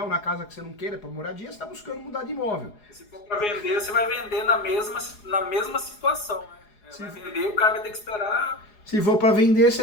na casa que você não queira, para moradia, você está buscando mudar de imóvel. Se for para vender, você vai vender na mesma situação, né? Vai vender, o cara vai ter que esperar. Se for para vender,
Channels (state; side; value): late; right; 4.8 ms